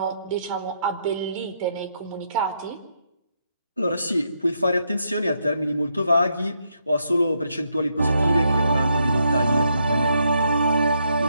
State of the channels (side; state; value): both; inverted; correlation -0.77